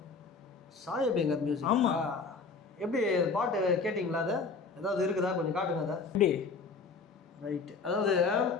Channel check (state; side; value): quieter; right; 4.5 dB